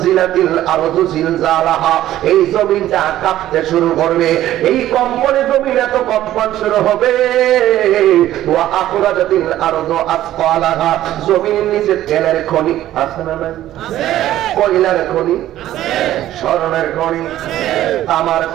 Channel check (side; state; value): left; quieter; 13.5 dB